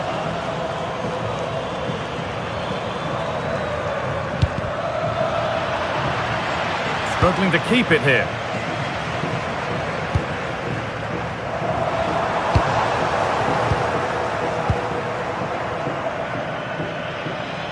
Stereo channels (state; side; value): identical; both; correlation 1.00